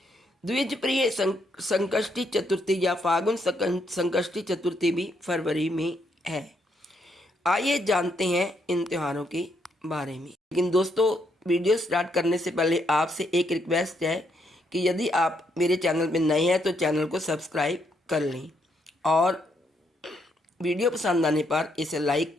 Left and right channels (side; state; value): both; normal; correlation 0.75